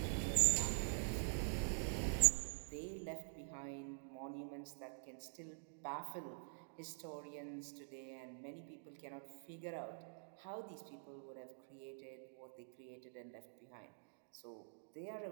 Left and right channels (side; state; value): left; silent; digital silence